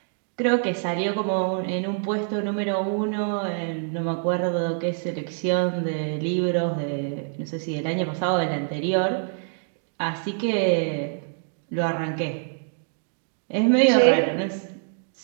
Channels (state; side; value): silent; left; digital silence